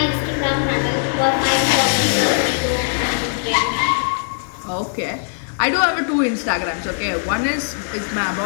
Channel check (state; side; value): silent; right; digital silence